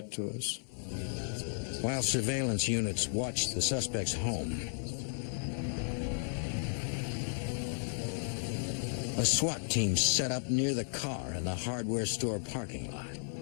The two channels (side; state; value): right; silent; digital silence